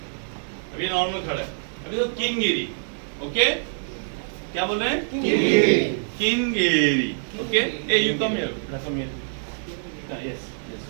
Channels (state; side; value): silent; left; digital silence